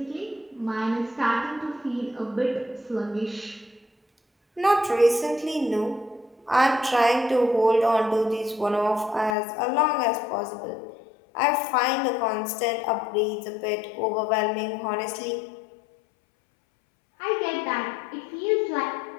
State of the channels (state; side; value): drops out; right; at 9.3 s